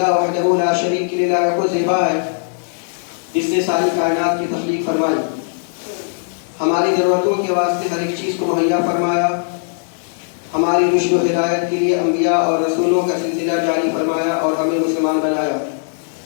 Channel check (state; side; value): silent; right; digital silence